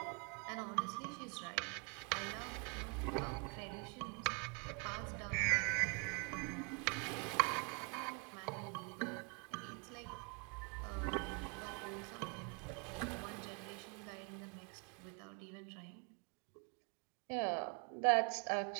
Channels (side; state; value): left; quieter; 35.0 dB